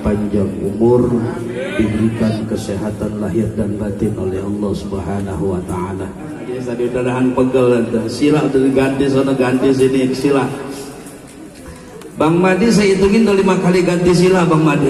panjang umur, diberikan kesehatan lahir dan batin oleh Allah Subhanahu wa taala. Tadi udahan pegel sila udah diganti sana ganti sini sila. Bang Madi saya hitungin udah 5 kali ganti sila Bang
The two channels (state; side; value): identical; both; correlation 1.00